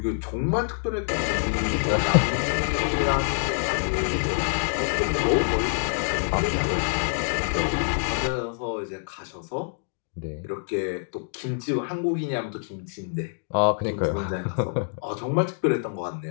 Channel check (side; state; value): right; silent; digital silence